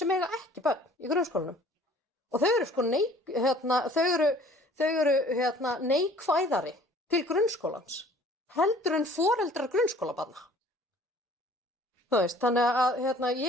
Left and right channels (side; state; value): both; normal; correlation 0.52